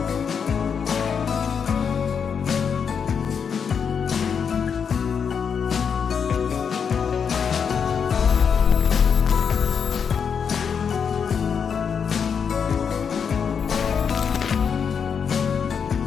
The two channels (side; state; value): right; quieter; 6.7 dB